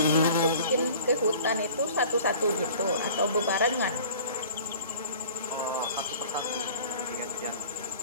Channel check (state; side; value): inverted; both; correlation -0.44